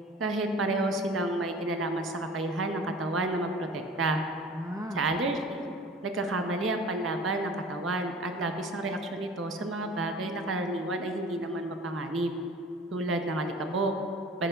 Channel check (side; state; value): both; normal; correlation 0.43